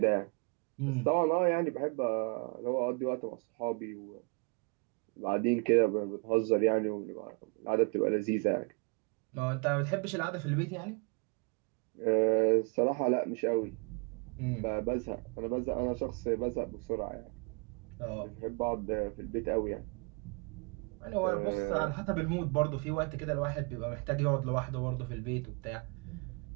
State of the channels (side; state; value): left; quieter; 33.9 dB